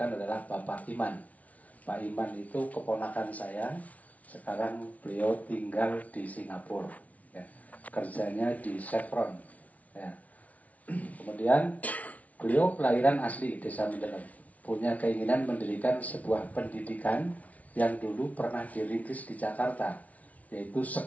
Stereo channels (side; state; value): right; late; 0.069 ms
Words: adalah Bapak Iman. Pak Iman itu keponakan saya. Sekarang beliau tinggal di Singapura ya. Kerjanya di Chevron ya. Kemudian beliau kelahiran asli Desa Mendalam, punya keinginan mendirikan sebuah pendidikan yang dulu pernah dirintis di Jakarta, yaitu